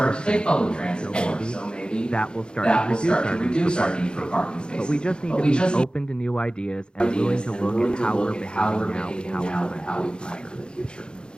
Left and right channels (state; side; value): late; right; 0.050 ms